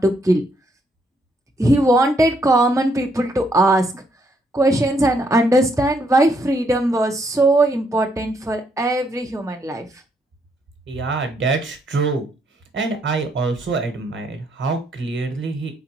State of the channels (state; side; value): normal; both; correlation 0.73